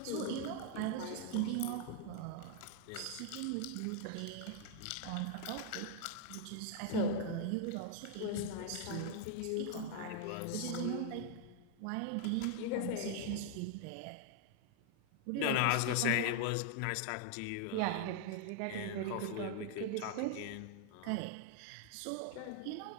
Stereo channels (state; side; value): different; both; correlation 0.00